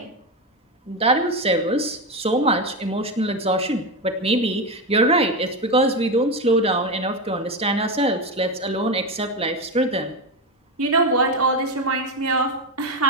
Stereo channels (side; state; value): both; normal; correlation 0.14